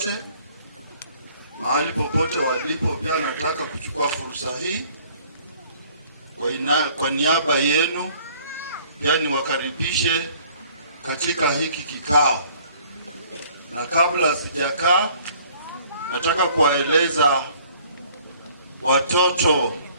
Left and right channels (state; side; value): inverted; both; correlation -0.57